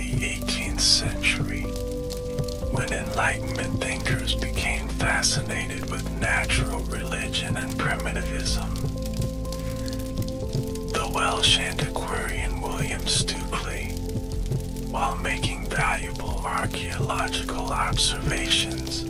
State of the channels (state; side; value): identical; both; correlation 1.00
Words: 18th century, when Enlightenment thinkers became fascinated with natural religion and primitivism. The Welsh antiquarian William Stukeley, while making valuable archaeological observations,